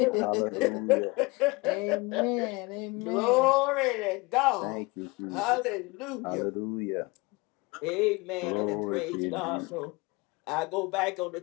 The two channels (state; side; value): quieter; right; 25.3 dB